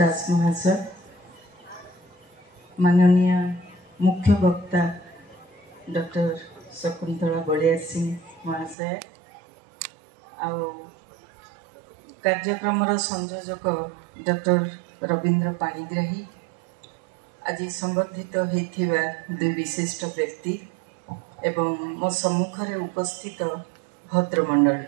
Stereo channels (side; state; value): left; drops out; at 8.8 s